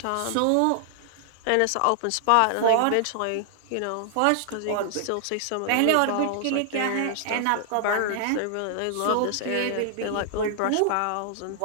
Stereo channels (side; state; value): both; different; correlation -0.01